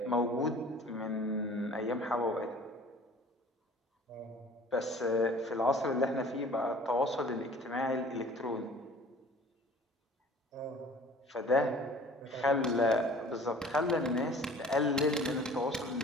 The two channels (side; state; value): both; normal; correlation 0.48